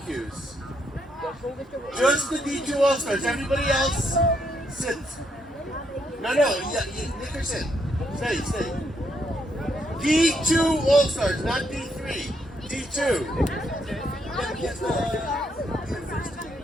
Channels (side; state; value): both; normal; correlation 0.76